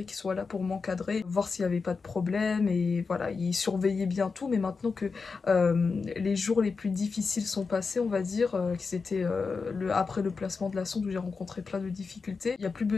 qu'ils soient là pour m'encadrer, voir s'il n'y avait pas de problème et voilà, ils surveillaient bien tout. Mais maintenant que les jours les plus difficiles sont passés, on va dire, que c'était après le placement de la sonde où j'ai rencontré plein de difficultés, il n'y a plus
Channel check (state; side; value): quieter; right; 4.7 dB